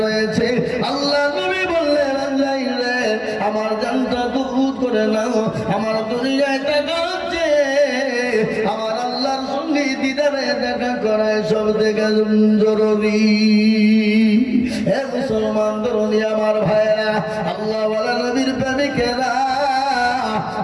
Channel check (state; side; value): identical; both; correlation 1.00